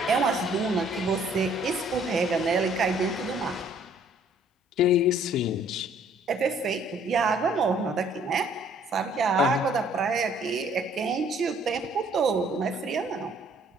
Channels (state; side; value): normal; both; correlation 0.60